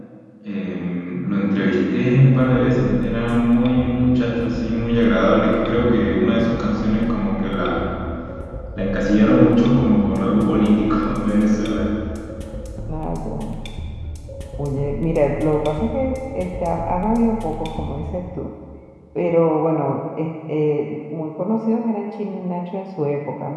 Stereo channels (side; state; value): both; identical; correlation 1.00